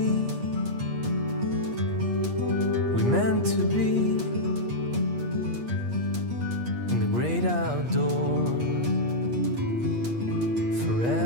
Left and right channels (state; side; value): late; left; 8.4 ms